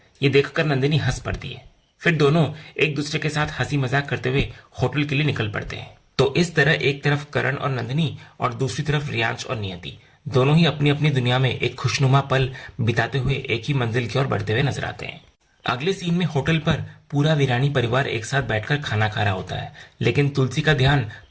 ये देखकर नंदिनी हंस पड़ती है। फिर दोनों एक दूसरे के साथ हंसी मजाक करते हुए होटल के लिए निकल पड़ते हैं। तो इस तरह एक तरफ करण और नंदिनी और दूसरी तरफ रियांश और नियति दोनों ही अपनी अपनी दुनिया में एक खुशनुमा पल बिताते हुए एक ही मंजिल की ओर बढ़ते हुए नजर आते हैं। अगले सीन में होटल पर पूरा वीरानी परिवार एक साथ बैठकर खाना खा रहा होता है, लेकिन तुलसी का ध्यान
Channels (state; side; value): identical; both; correlation 1.00